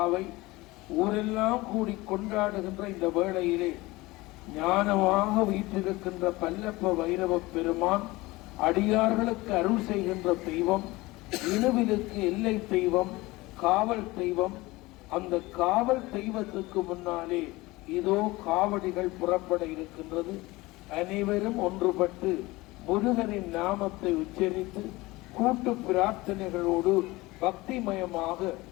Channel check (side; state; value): right; quieter; 20.9 dB